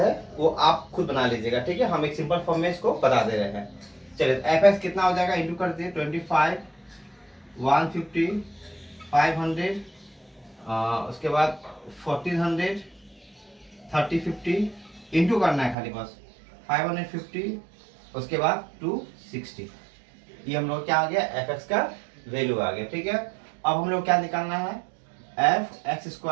वो आप खुद बना लीजिएगा, ठीक है। हम एक सिंपल फॉर्म में इसको बता दे रहे हैं। चलिए एफ एक्स कितना हो जाएगा, इंटू कर दिए 25, 150, 500, उसके बाद 1400, 30, 50 इंटू करना है खाली बस 550, उसके बाद 260। ये हम लोग क्या आ गया, एफ एक्स का वैल्यू आ गया, ठीक है। अब हम लोग क्या निकालना है, एफ एक्स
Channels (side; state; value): left; drops out; at 15.8 s